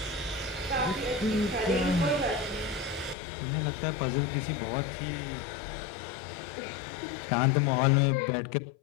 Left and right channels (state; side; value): drops out; right; at 3.2 s